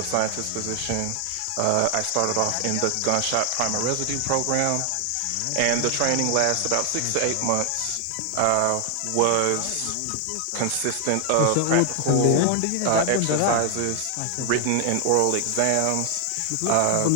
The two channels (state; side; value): different; both; correlation 0.00